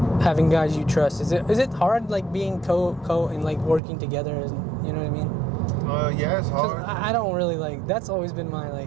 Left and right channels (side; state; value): left; drops out; at 3.8 s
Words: having guys you trust? Is it hard like being co and like working together? You know what I mean? Yeah, it's hard. I don't really like. That's always been my